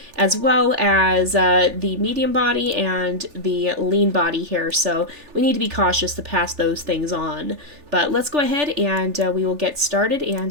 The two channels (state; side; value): late; left; 3.4 ms